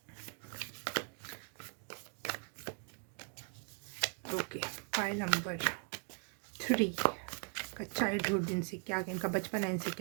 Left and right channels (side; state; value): left; quieter; 39.6 dB